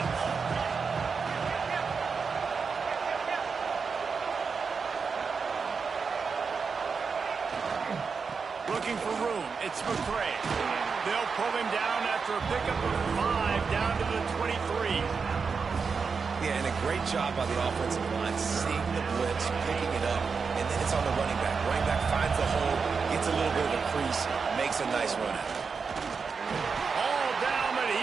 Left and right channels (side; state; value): left; quieter; 5.3 dB